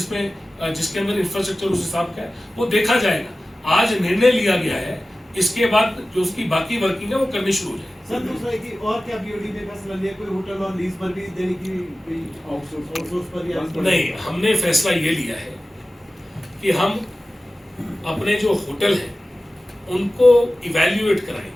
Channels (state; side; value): normal; both; correlation 0.96